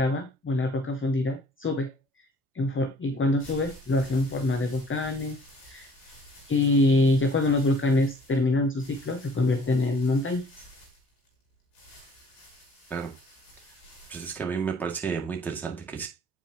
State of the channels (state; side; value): normal; both; correlation 0.55